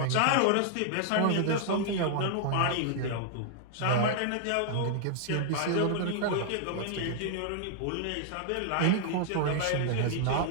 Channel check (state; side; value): different; both; correlation 0.00